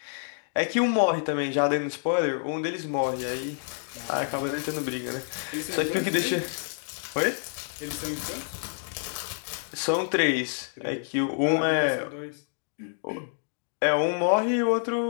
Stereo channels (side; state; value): right; silent; digital silence